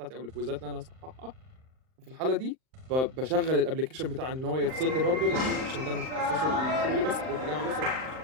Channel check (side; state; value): left; late; 38 ms